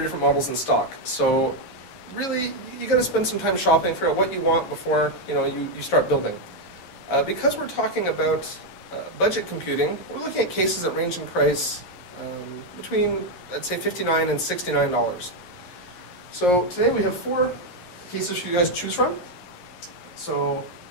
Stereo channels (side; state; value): right; late; 11 ms